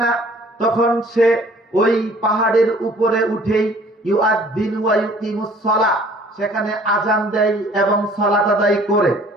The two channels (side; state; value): both; normal; correlation 0.54